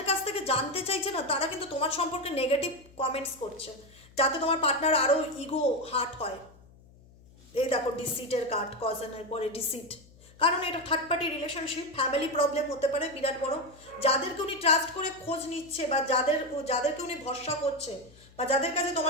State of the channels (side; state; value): left; noise; hum, 25 dB below the sound